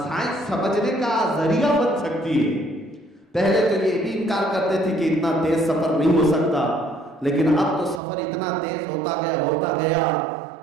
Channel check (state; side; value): drops out; left; at 8.0 s